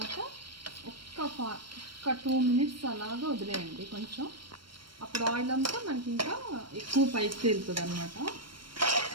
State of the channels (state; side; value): late; left; 0.73 ms